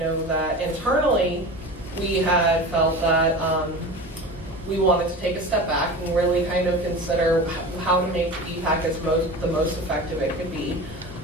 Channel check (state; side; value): normal; both; correlation 0.32